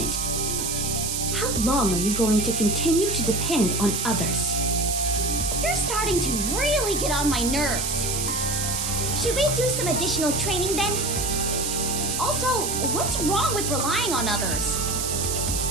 How long are you going to continue to depend on others? You're starting to really get on my nerves. Should we do some additional training then? Also, what's wrong with relying on others?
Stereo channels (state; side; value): noise; right; hiss, 1 dB below the sound